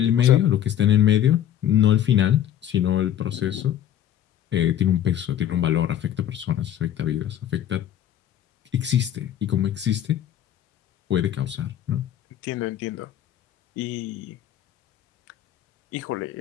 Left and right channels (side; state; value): right; quieter; 10.9 dB